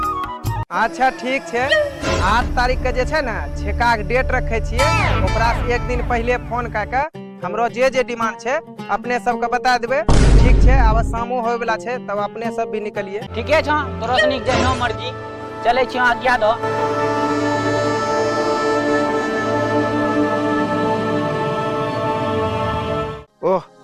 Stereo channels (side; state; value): both; identical; correlation 1.00